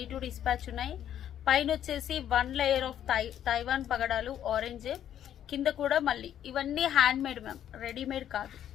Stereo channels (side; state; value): right; quieter; 10.5 dB